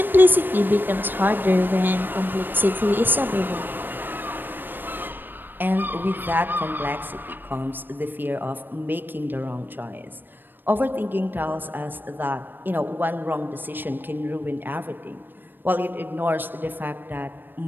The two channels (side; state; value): left; late; 0.094 ms